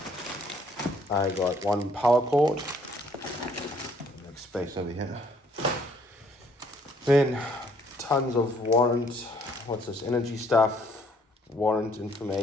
I got one power cord, make space over here. Then tons of energy stuff, warrant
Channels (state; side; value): normal; both; correlation 0.64